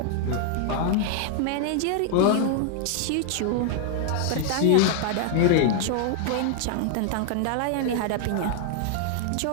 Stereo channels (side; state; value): both; different; correlation -0.01